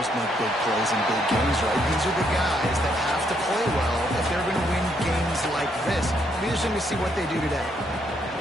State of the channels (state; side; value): normal; both; correlation 0.73